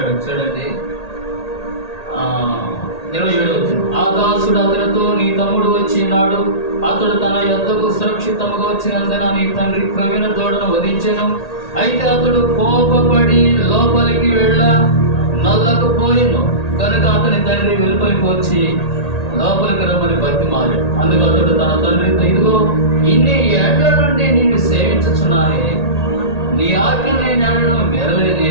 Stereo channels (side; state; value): right; late; 1.8 ms